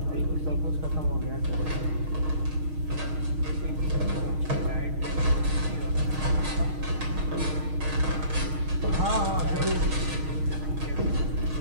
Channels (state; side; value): late; left; 6.4 ms